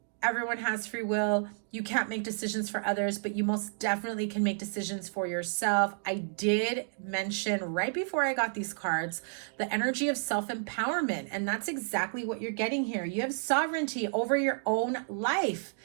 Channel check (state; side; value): silent; left; digital silence